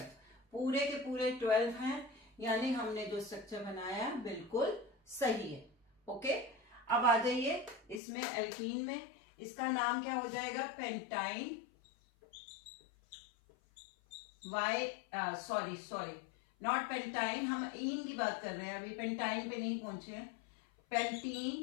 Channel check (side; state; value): right; drops out; at 8.0 s